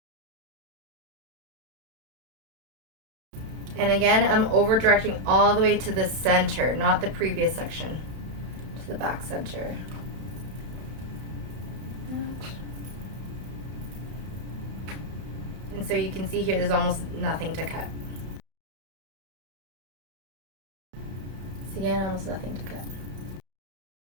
And again, I'm over directing all the way to the center, not the previous section, to the back center. And so you can see here there's almost nothing to cut. So again, almost nothing to cut.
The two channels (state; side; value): late; left; 32 ms